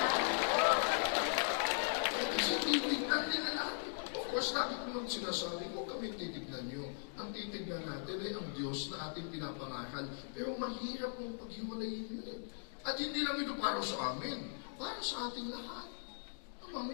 Kasi titignan nila natin. Of course, lagi ko nang sinasabi, huwag kami titignan nyo. Ang titignan natin ay ang Diyos na ating pinapangaral. Pero mahirap mong paghiwalayin yun eh. At hindi lang ito para sa amin, para sa ating lahat.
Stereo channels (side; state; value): right; silent; digital silence